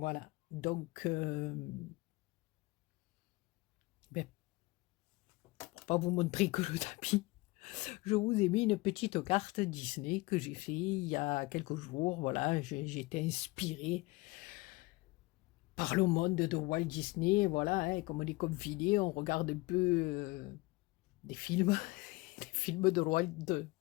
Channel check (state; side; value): quieter; right; 22.5 dB